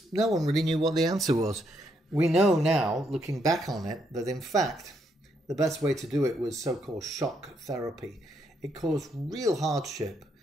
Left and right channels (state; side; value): normal; both; correlation 0.75